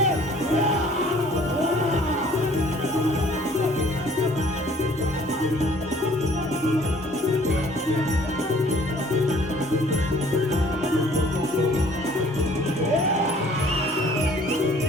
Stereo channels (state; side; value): normal; both; correlation 0.56